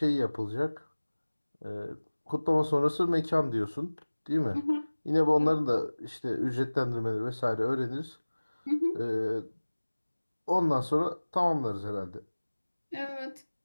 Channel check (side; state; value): both; inverted; correlation -1.00